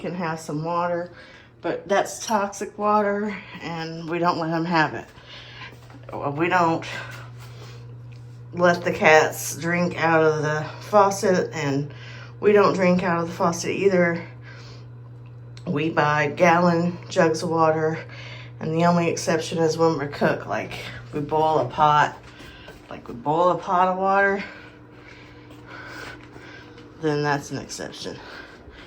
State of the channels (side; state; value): both; identical; correlation 1.00